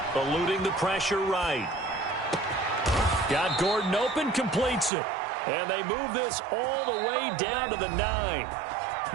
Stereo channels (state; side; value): drops out; left; at 4.9 s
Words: Eluding the pressure right. Got Gordon open, completes it. And they move this all the way down to the 9.